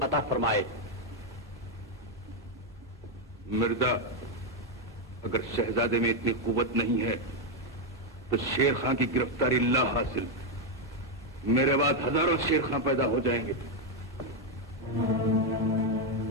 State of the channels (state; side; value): normal; both; correlation 0.02